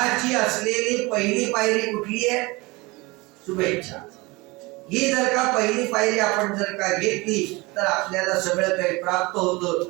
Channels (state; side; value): quieter; left; 23.9 dB